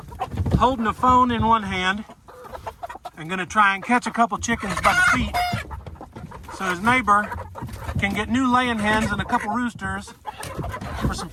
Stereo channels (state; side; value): identical; both; correlation 1.00